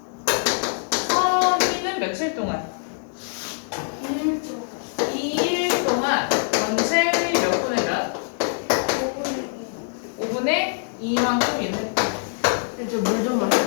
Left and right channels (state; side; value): silent; right; 63 dB below the other